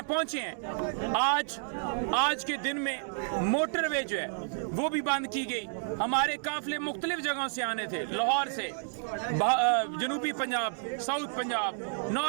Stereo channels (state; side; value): silent; left; digital silence